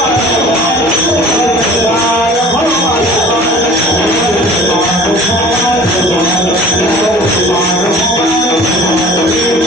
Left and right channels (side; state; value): both; normal; correlation 0.45